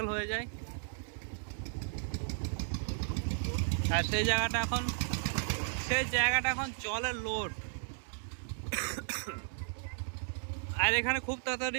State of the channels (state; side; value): silent; left; digital silence